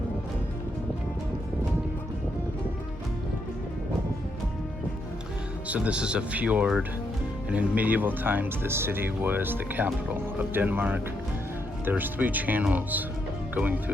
So this is a fjord, and in medieval times this city was the capital of Denmark. There's 3 channels going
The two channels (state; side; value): normal; both; correlation 0.78